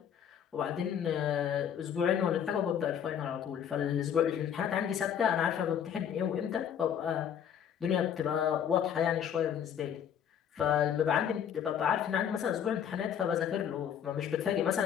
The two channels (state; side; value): quieter; right; 8.8 dB